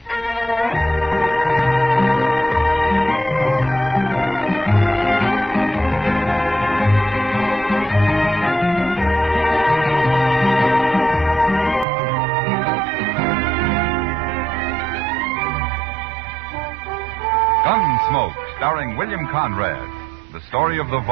Gunsmoke, starring William Conrad. The story of the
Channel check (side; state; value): left; drops out; at 11.9 s